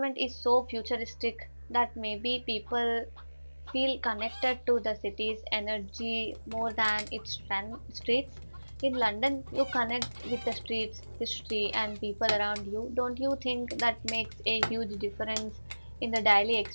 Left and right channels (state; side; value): inverted; both; correlation -1.00